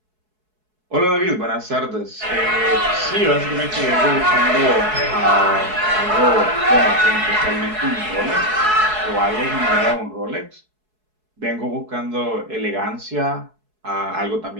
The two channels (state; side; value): late; left; 4.7 ms